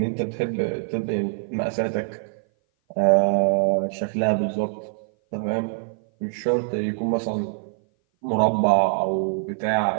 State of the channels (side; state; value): left; silent; 57 dB below the other